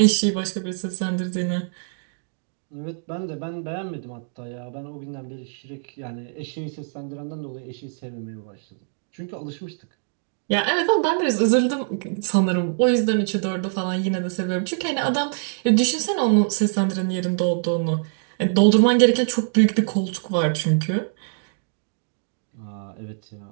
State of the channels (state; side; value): silent; left; 63 dB below the other